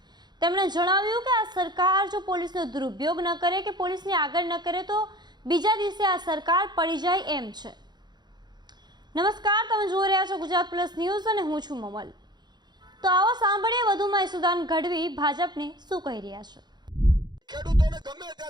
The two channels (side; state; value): left; late; 0.21 ms